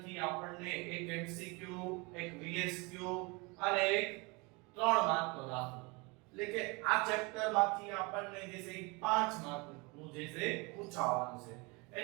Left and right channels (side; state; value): left; quieter; 27.6 dB